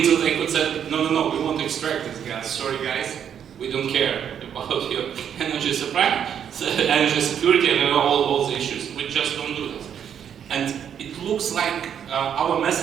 they could say, no, we want to extract this gas. Sorry guys, we don't care about your energy supply, energy security, and all the issues. We just don't do this. And it looks like our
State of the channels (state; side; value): quieter; left; 8.6 dB